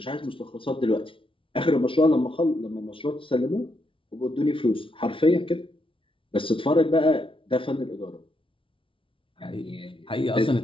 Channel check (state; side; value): late; right; 0.25 ms